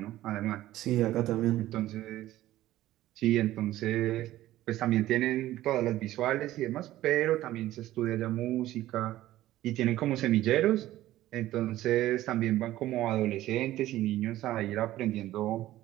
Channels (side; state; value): left; quieter; 14.9 dB